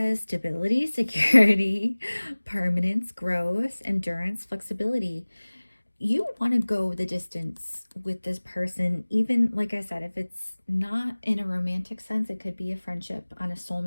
stability, security, permanence, growth, endurance, flexibility. You want to go the distance with this person, even like I said, if it's not in a romantic sense, it could be a friendship on a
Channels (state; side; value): inverted; both; correlation -1.00